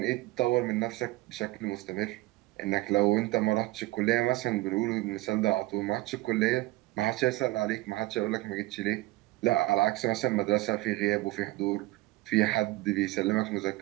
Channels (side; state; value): left; quieter; 19.0 dB